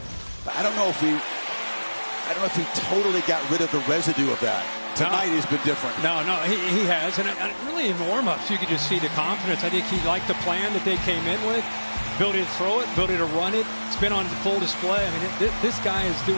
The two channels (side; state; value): both; inverted; correlation -1.00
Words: But I don't know if he totally got rid of the residue of that. Tonight he's been different. No, he has. And really in warm-ups, you could just see the confidence. I think he liked the plan that they came in with. Ability to throw it, ability to run it. It's been on full display. I mean, this guy is